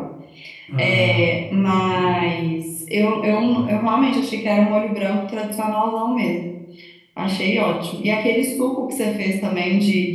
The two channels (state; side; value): identical; both; correlation 1.00